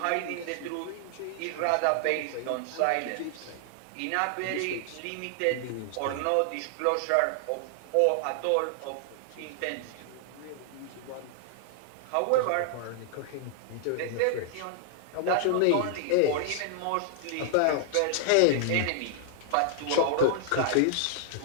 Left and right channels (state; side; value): different; both; correlation -0.01